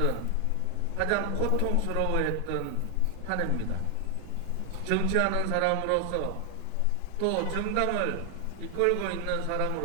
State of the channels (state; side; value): different; both; correlation 0.00